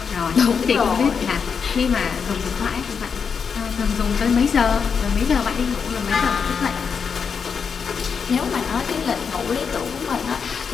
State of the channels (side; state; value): right; quieter; 6.2 dB